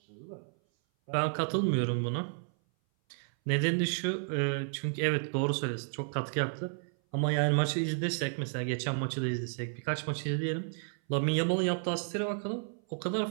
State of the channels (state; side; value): silent; left; 56 dB below the other